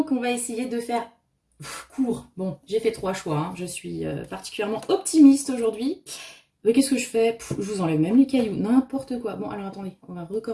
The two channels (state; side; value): identical; both; correlation 1.00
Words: on va essayer de faire court. Bon, j'ai fait 3 choix. Hein. Je suis particulièrement optimiste aujourd'hui. Mais qu'est-ce que je fais? Je vous enlève même les cailloux, n'importe quoi. Bon, alors attendez, on va